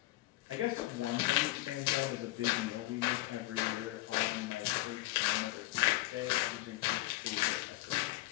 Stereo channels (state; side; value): quieter; right; 18.6 dB